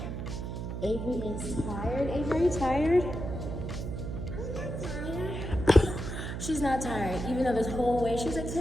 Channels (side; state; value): right; noise; hum, 5 dB below the sound